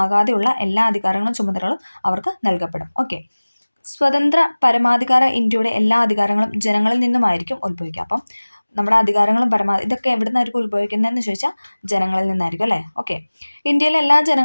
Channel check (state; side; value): inverted; both; correlation -1.00